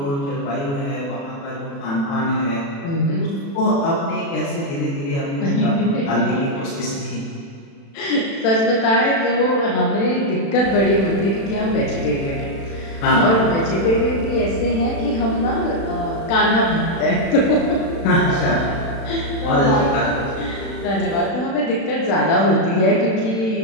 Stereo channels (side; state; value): right; late; 36 ms